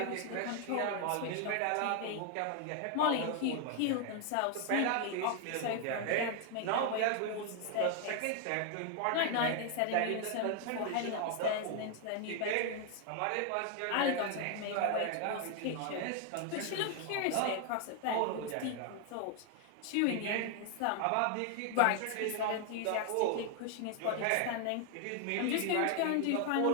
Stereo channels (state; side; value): different; both; correlation 0.00